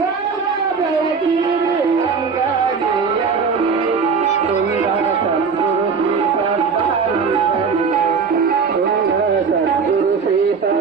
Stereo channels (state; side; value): quieter; left; 5.5 dB